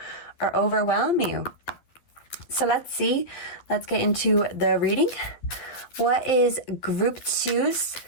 or overwhelm you. So let's see. Let's get into the reading. What is group 2's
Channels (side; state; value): right; late; 12 ms